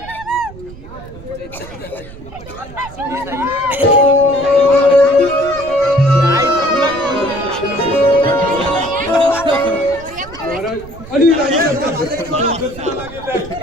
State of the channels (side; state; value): right; noise; rumble, 17 dB below the sound